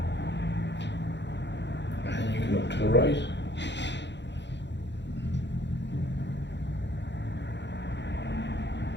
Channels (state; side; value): late; right; 0.52 ms